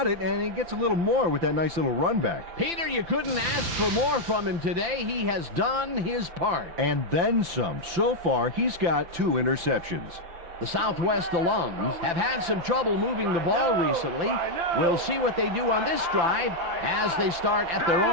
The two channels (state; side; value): late; left; 5.9 ms